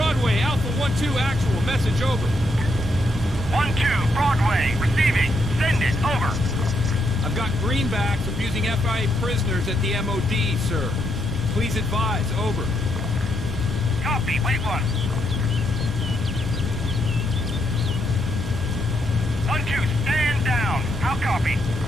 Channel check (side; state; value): both; normal; correlation 0.78